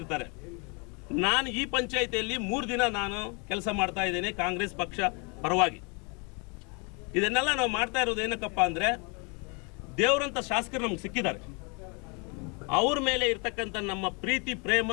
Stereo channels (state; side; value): quieter; right; 33.0 dB